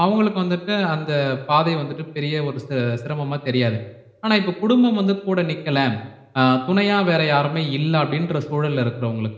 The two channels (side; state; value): both; identical; correlation 1.00